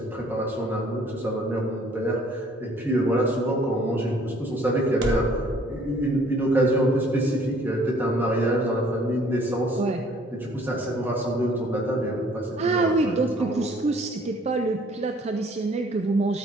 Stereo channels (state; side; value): normal; both; correlation 0.58